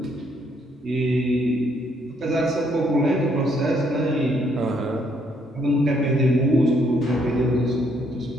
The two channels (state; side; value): normal; both; correlation 0.70